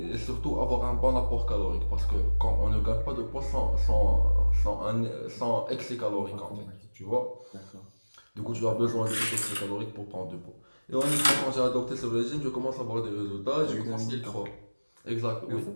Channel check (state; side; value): inverted; both; correlation -1.00